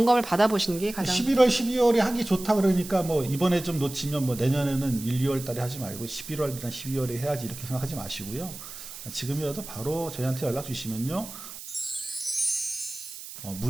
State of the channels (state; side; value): noise; right; hiss, 12 dB below the sound